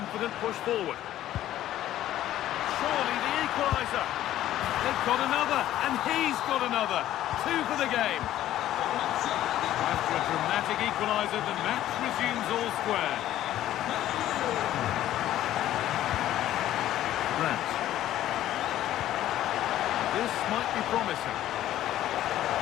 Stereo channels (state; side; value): quieter; right; 13.1 dB